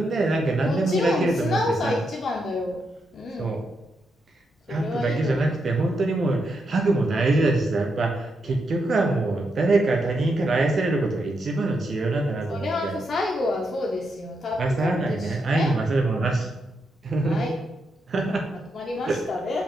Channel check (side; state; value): both; normal; correlation 0.82